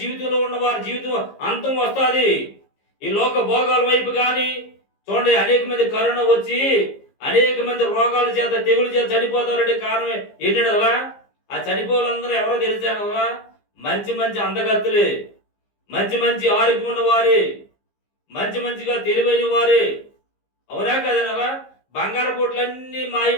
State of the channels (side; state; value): right; late; 15 ms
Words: జీవితంలో ఉన్న వారి జీవితం అంతం వస్తుంది. ఈ లోక భోగాల వైపు కానీ చూడండి అనేక మంది కరోనా వచ్చి అనేక మంది రోగాల చేత తెగుల చేత చనిపోతారంటే కారణం ఏంటంటే అలా ఆ చనిపోవాలందరూ ఎవరో తెలిసాను అలా మంచి మంచి అందగత్తులే, మంచి మంచి ఆరోగ్యం ఉన్న వారే, మంచిగా తెలివైన వారే, అవునా కదనలా? బంగారు కోట్లన్నీ మాయి